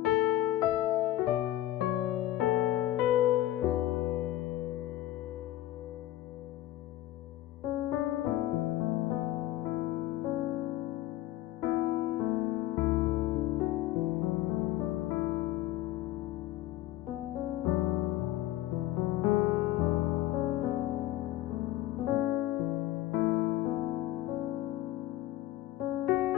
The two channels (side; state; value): right; quieter; 14.8 dB